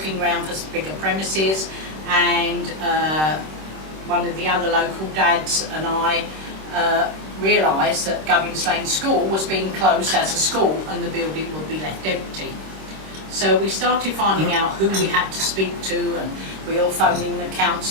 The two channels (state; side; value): late; left; 26 ms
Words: around for some bigger premises, and one of the other local dads and I realised that Gubbins Lane School was being closed as a school and the building would be left empty. So we started finding out who we had to speak to, and we were phoning the